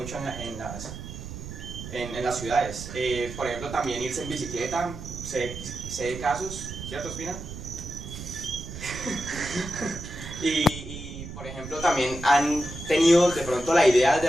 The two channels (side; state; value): right; noise; rumble, 10 dB below the sound